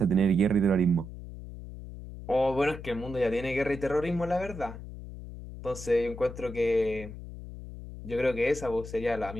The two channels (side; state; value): left; noise; hum, 12 dB below the sound